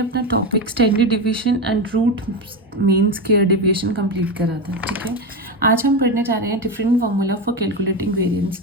topic standard division and root mean square deviation complete करा था। ठीक है, आज हम पढ़ने जा रहे हैं different formula for calculating variance.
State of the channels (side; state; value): both; normal; correlation 0.16